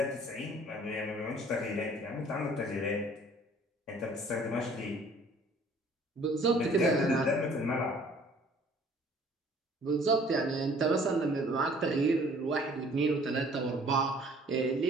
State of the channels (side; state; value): both; normal; correlation 0.54